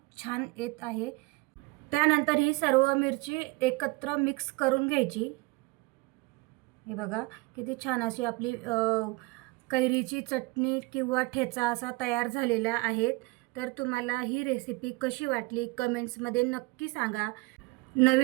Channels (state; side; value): quieter; left; 23.8 dB